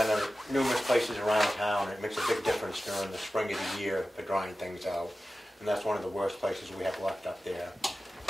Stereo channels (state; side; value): normal; both; correlation 0.95